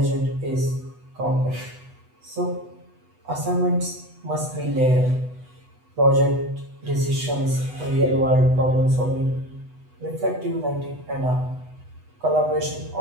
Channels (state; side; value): late; left; 8.1 ms